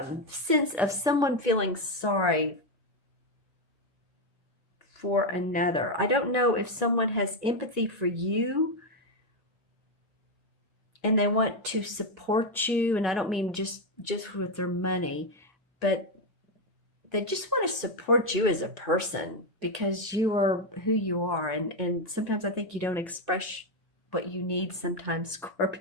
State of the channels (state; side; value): normal; both; correlation 0.06